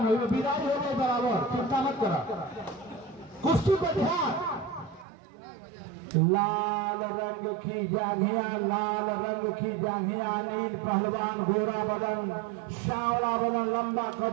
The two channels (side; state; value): left; drops out; at 5.1 s